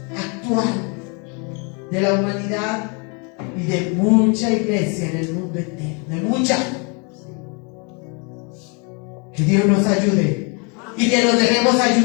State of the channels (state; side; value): quieter; right; 34.5 dB